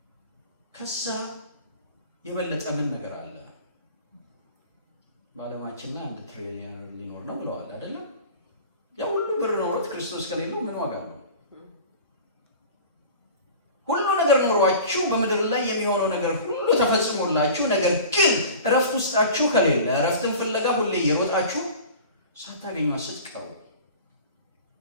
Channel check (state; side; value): inverted; both; correlation -0.40